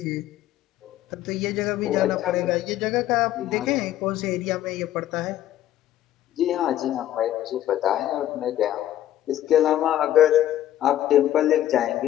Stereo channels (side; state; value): right; quieter; 12.6 dB